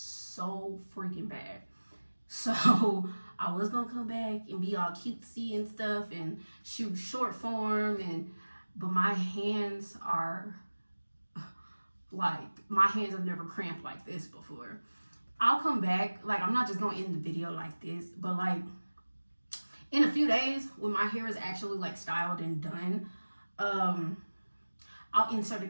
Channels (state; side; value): inverted; both; correlation -1.00